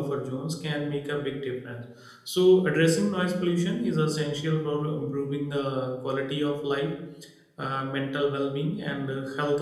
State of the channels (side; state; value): both; identical; correlation 1.00